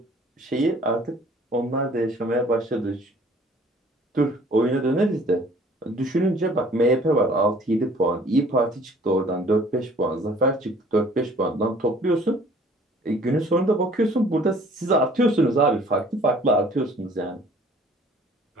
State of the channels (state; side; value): normal; both; correlation 0.54